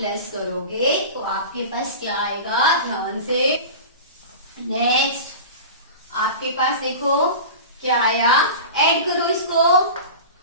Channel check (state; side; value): inverted; both; correlation -0.32